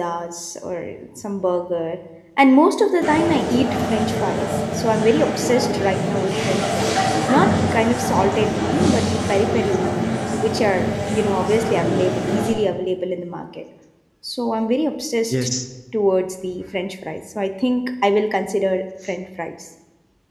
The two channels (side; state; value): both; identical; correlation 1.00